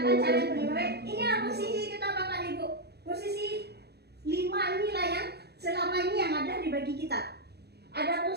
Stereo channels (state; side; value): late; left; 0.48 ms